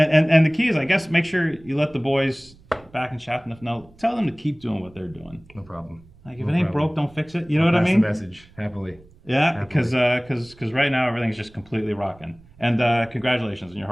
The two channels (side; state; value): right; noise; rumble, 26 dB below the sound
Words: the key is, I guess, make sure you let the boys back in Chateauneuf know. Tell them to keep doing what they're doing. No problem. Like if it ain't broke, don't fix it. You know what I mean? That's the message. Happily. Yeah, because right now everything's just completely rocking. And congratulations on your